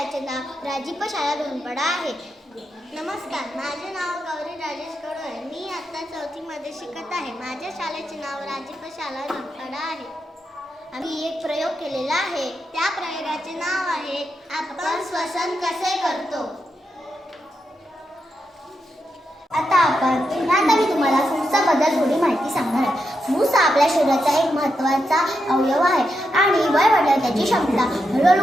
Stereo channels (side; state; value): both; normal; correlation 0.85